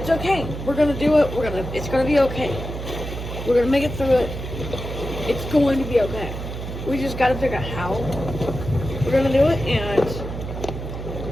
okay. We're gonna do it. It's gonna be okay. We're gonna make it through it. It's going to be okay. We just gotta figure out how we're gonna do it and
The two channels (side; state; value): right; noise; hum, 7 dB below the sound